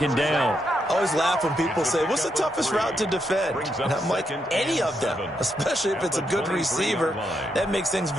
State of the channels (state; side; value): normal; both; correlation 0.81